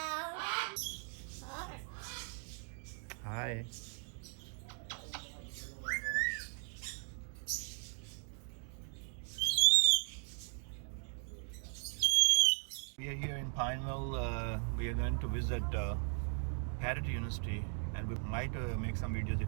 Hi. We are here in Pineville. We are going to visit Parrot University, and we might make some videos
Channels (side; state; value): left; silent; 52 dB below the other